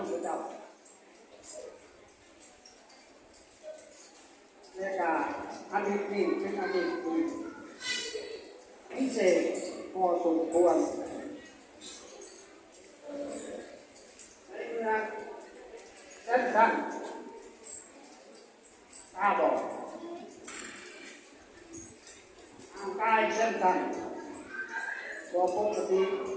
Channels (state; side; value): identical; both; correlation 1.00